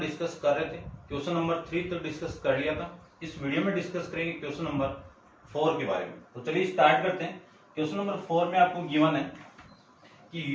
डिस्कस कर रहे थे। क्वेश्चन नंबर 3 तक डिस्कस कर लिया था। इस वीडियो में डिस्कस करेंगे क्वेश्चन नंबर 4 के बारे में। तो चलिए स्टार्ट करते हैं। क्वेश्चन नंबर 4 में आपको गिवन है कि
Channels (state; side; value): identical; both; correlation 1.00